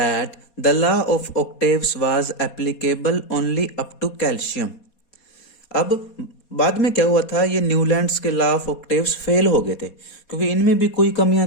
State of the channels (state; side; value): late; right; 4.2 ms